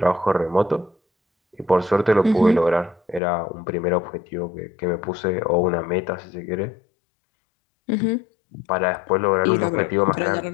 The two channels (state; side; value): drops out; right; at 3.2 s